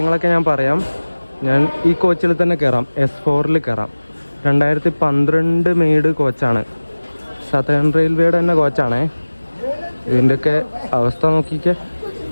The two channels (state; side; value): inverted; both; correlation -1.00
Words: ഞാൻ പറയാം. ഞാൻ ഈ കോച്ചിൽ തന്നെ കയറാം. S4 കയറാം. 2012 മെയ്ഡ് കോച്ചാണ്. സതേൺ റെയിൽവേയുടെ തന്നെ കോച്ചാണേ. ഇതിൻ്റെയൊക്കെ അവസ്ഥ നോക്കിക്കേ.